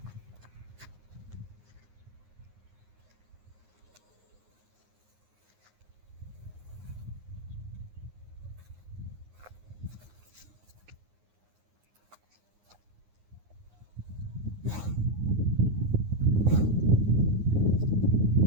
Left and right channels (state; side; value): late; left; 9.6 ms